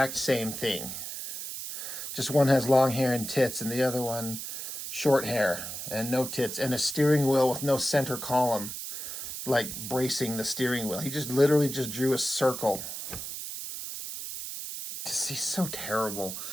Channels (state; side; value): noise; right; hiss, 7 dB below the sound